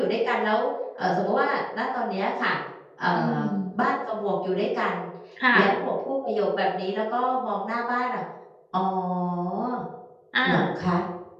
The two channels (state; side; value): identical; both; correlation 1.00